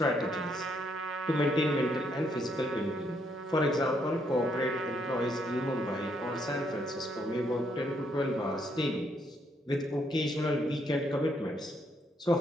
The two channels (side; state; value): both; normal; correlation 0.73